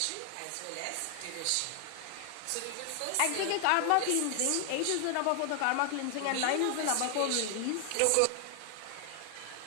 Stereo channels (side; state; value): both; different; correlation 0.00